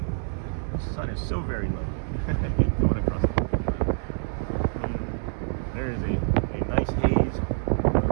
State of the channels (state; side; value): silent; left; 61 dB below the other